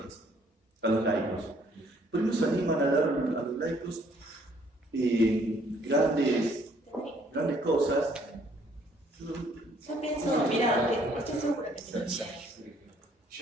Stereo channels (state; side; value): normal; both; correlation 0.63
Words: a los laicos. Por ahí nos animan a dar a los laicos grandes cosas. Yo pienso, mira, estoy segura que sí.